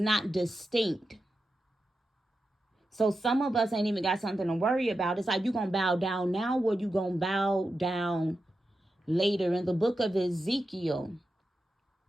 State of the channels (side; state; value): both; normal; correlation 0.90